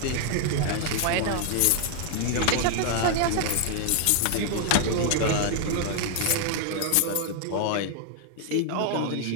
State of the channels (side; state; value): both; different; correlation 0.00